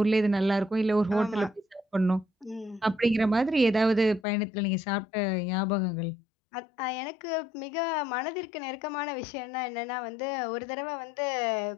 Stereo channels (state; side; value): drops out; right; at 4.2 s